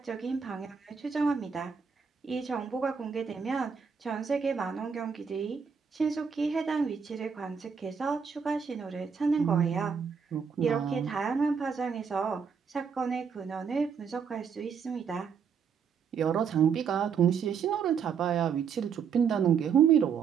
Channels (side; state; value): left; quieter; 6.5 dB